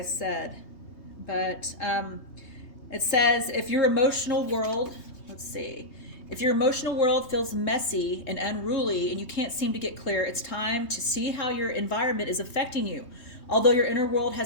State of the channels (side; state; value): right; late; 3.2 ms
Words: said, but it says if your emotional world, if your emotional world feels messy and unruly and you can't seem to get clear, it's time to see how your environment is affecting you. Although your inner world